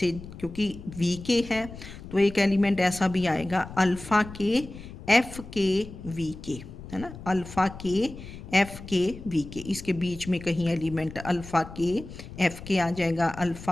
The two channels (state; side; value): noise; left; rumble, 14 dB below the sound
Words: क्योंकि VK है तो एक एलिमेंट ऐसा भी आएगा अल्फ़ा के FK VK, है ना, अल्फ़ा के FK VK, इसके बीच में कहीं एलिमेंट अल्फ़ा के FK आ जाएगा।